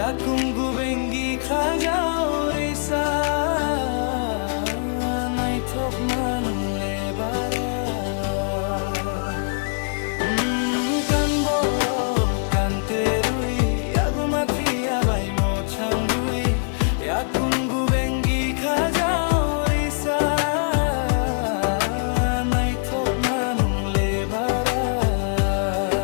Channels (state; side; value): silent; right; 64 dB below the other